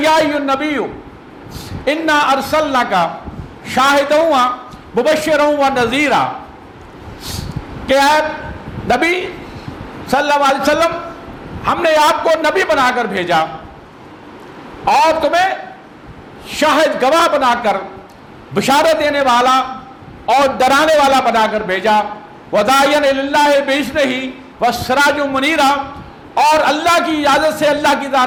ایھا النبی انا ارسلناک شاہدا مبشرا ونذیرا، کہ اے نبی صلی اللہ علیہ وسلم ہم نے آپ کو نبی بنا کر بھیجا اور تمہیں شاہد گواہ بنا کر بشارت دینے والا اور ڈرانے والا بنا کر بھیجا، وَدَاعِيًا إِلَى اللَّهِ بِإِذْنِهِ وَسِرَاجًا مُنِيرًا، اور اللہ کی اجازت سے اللہ کی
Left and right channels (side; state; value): both; identical; correlation 1.00